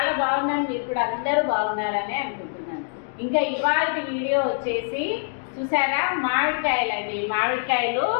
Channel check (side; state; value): right; silent; digital silence